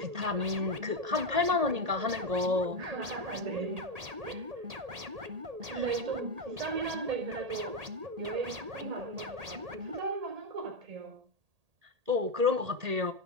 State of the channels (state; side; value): late; left; 1.8 ms